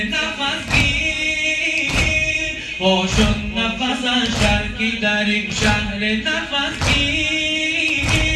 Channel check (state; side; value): identical; both; correlation 1.00